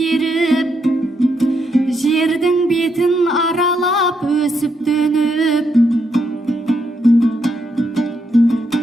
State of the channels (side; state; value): both; normal; correlation 0.79